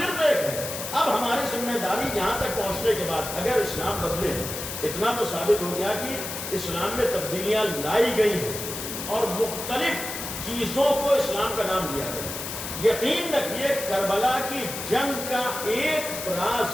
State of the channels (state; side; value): noise; left; hiss, 7 dB below the sound